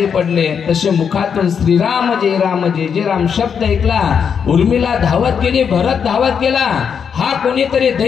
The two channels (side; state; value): right; quieter; 7.0 dB